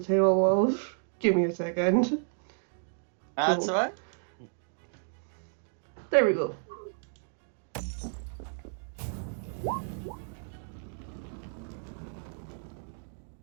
tail of. Give me a second. That's Cool. alright. There we go.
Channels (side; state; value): left; silent; digital silence